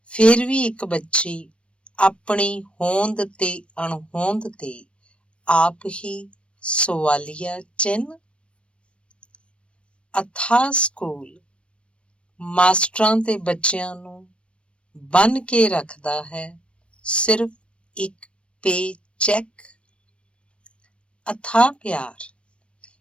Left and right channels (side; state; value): right; late; 0.059 ms